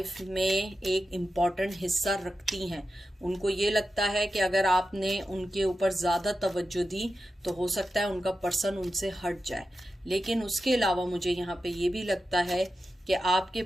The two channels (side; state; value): both; normal; correlation 0.91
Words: में एक इम्पॉर्टेंट हिस्सा रखती हैं। उनको ये लगता है कि अगर आपने उनके ऊपर ज़्यादा तवज्जो दी तो हो सकता है उनका पर्सन उनसे हट जाए। लेकिन उसके अलावा मुझे यहाँ पे ये भी लगता है कि आपके